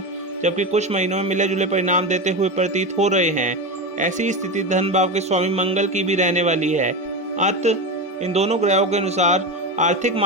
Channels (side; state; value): both; normal; correlation 0.19